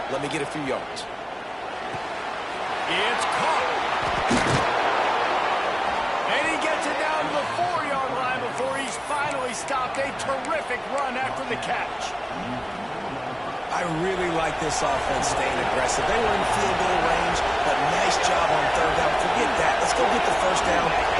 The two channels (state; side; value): identical; both; correlation 1.00